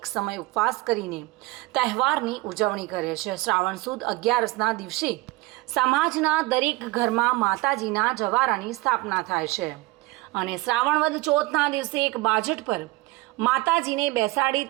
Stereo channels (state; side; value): quieter; left; 21.1 dB